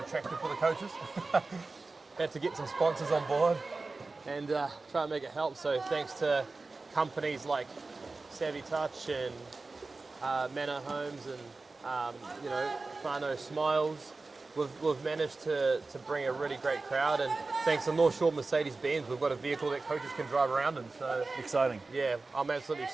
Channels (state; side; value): quieter; left; 3.6 dB